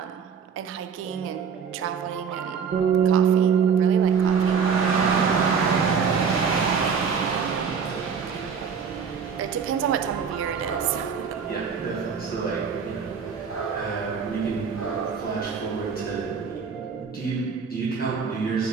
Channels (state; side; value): quieter; left; 6.3 dB